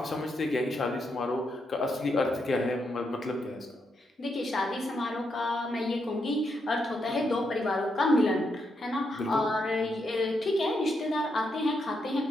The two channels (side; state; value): both; normal; correlation 0.81